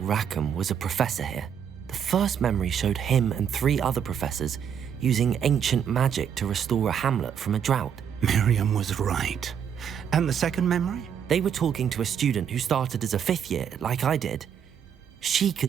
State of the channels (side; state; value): left; quieter; 8.2 dB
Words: was a professor here. The first memory showed him and 3 other professors using ancient magic to restore a hamlet from a drought. Miriam was right. And the second memory? They were talking to a student who started as a 5th year, like I did. She